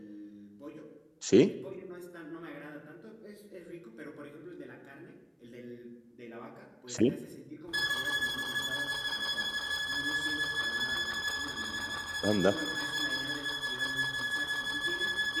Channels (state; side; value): identical; both; correlation 1.00